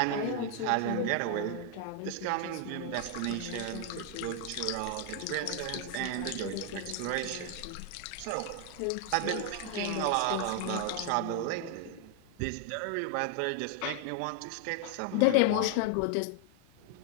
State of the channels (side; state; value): both; different; correlation 0.00